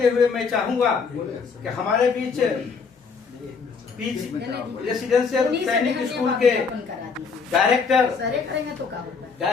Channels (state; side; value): quieter; right; 5.3 dB